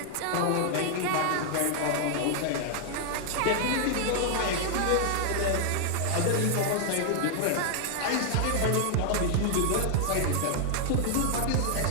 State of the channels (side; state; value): both; different; correlation 0.00